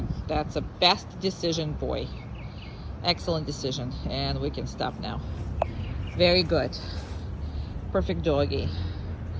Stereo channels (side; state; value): both; identical; correlation 1.00